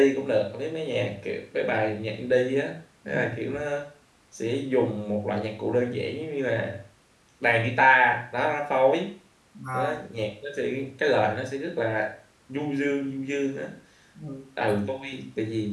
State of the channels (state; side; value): identical; both; correlation 1.00